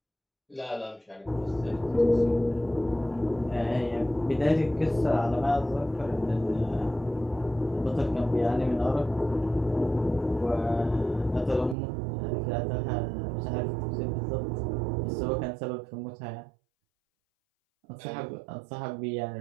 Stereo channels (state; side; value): drops out; left; at 11.8 s